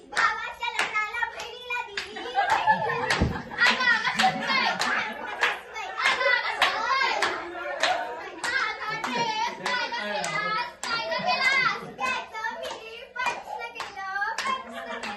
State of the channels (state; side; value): identical; both; correlation 1.00